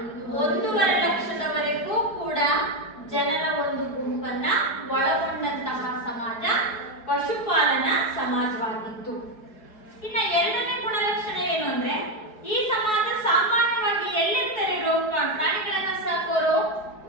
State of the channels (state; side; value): late; right; 4.7 ms